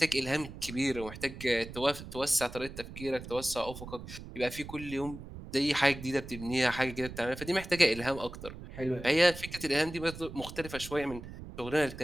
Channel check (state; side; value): noise; right; rumble, 12 dB below the sound